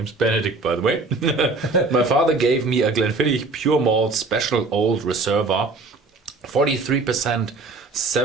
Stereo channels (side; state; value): left; quieter; 3.6 dB